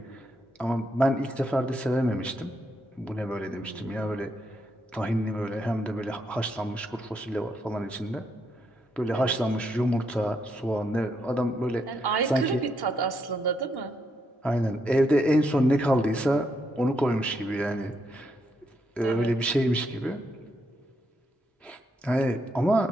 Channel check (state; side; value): normal; both; correlation 0.78